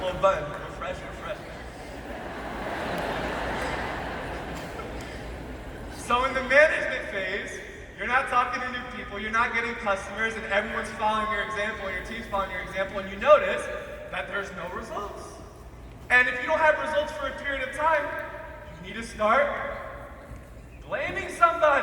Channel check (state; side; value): identical; both; correlation 1.00